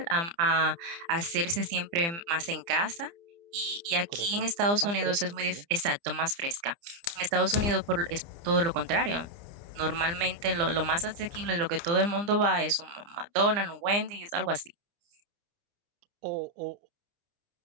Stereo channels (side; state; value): left; late; 29 ms